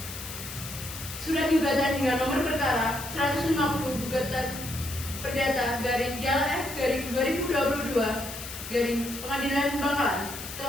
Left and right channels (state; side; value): noise; left; hiss, 10 dB below the sound